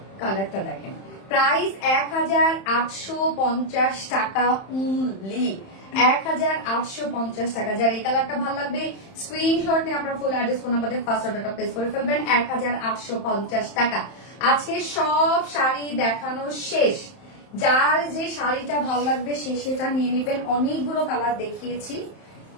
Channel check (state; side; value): late; right; 31 ms